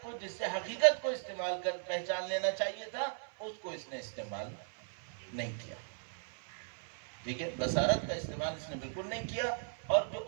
کو جس سے حقیقت کو استعمال کر پہچان لینا چاہیے تھا اس کو اس نے استعمال نہیں کیا. ٹھیک ہے، بصارت کا استعمال اس نے بالکل نہیں کیا، اور جو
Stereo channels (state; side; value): silent; left; 53 dB below the other